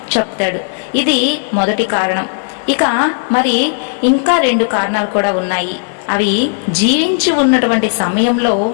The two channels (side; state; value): right; silent; digital silence